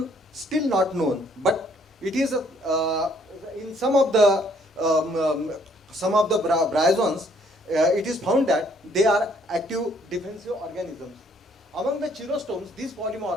still not known, but it is in some of the bryozoans, it is found that they are active defensive organisms. Among the chelostomes, these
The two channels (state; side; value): normal; both; correlation 0.64